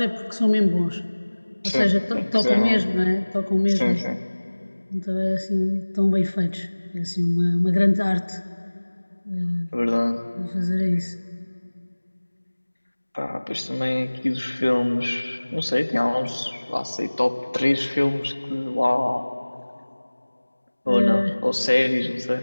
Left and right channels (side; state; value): both; inverted; correlation -1.00